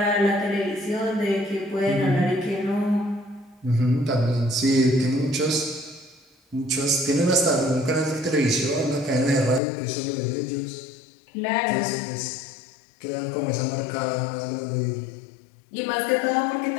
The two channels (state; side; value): drops out; right; at 9.6 s